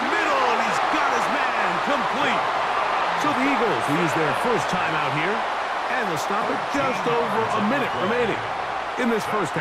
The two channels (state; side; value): identical; both; correlation 1.00